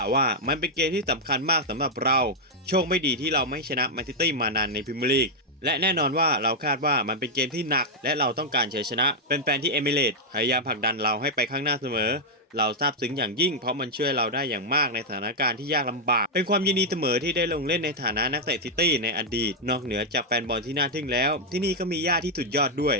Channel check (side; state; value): both; normal; correlation -0.02